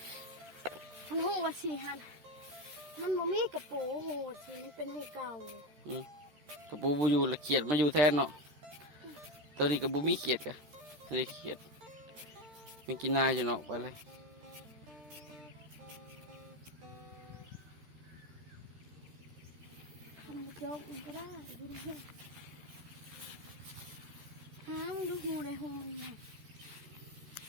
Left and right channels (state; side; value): late; left; 13 ms